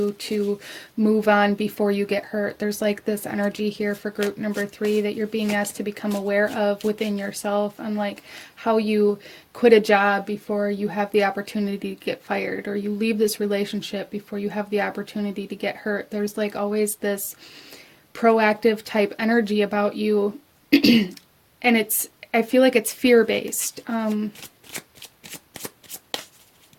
to move on before you get hurt. There's like this energy here for group number 3 that you're being asked to become aware of within yourself, on like how you quit a job before you have the opportunity to get fired, or you leave this relationship before you have the opportunity to get hurt. There's like always this proactive type energy about you. And I feel like it's fear-based.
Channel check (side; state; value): both; identical; correlation 1.00